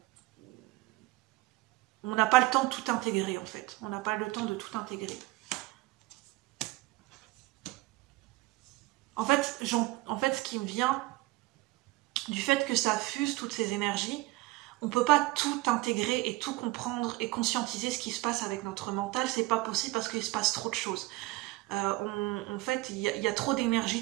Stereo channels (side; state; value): left; quieter; 20.6 dB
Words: on n'a pas le temps de tout intégrer en fait. On n'a pas le temps de tout intégrer. En fait, ce qui me vient du fait que ça fuse toutes ces énergies, on ne peut pas tout intégrer et tout comprendre et conscientiser ce qui se passe avec notre mental. C'est pas possible parce qu'il se passe trop de choses. En fait, il y a trop